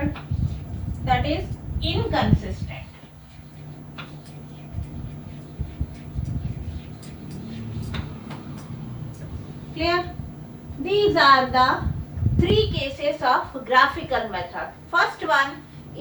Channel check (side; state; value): both; identical; correlation 1.00